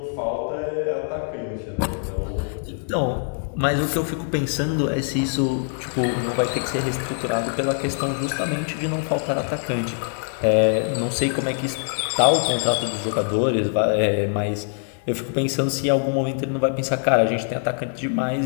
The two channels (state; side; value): silent; right; 63 dB below the other